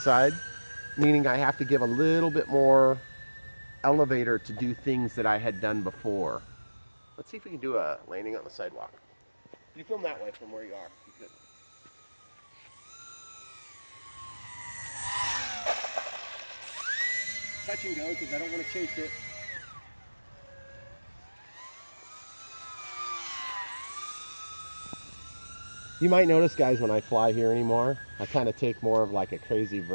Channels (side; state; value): both; inverted; correlation -1.00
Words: meaning I have to give a little bit more elevator to do things that I had done before. Let's see if we can do a landing on the sidewalk. You film that way from where you are. You could. Touch and go because I don't want to chase it. You might notice, guys, when I fly here anymore, I kind of take more of like a crazy